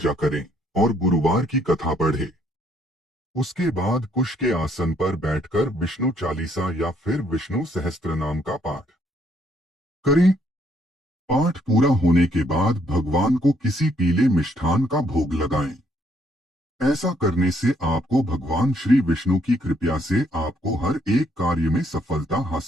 करें और गुरुवार की कथा पढ़ें। उसके बाद कुश के आसन पर बैठकर विष्णु चालीसा या फिर विष्णु सहस्त्रनाम का पाठ करें। पाठ पूरा होने के बाद भगवान को किसी पीले मिष्ठान का भोग लगाएं। ऐसा करने से आपको भगवान श्री विष्णु की कृपा से आपको हर एक कार्य में सफलता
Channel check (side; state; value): both; normal; correlation 0.69